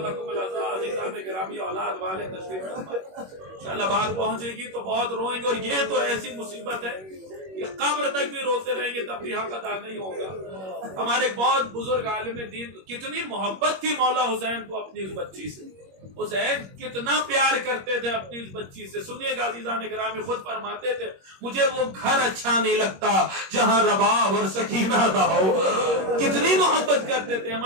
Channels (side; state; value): left; late; 21 ms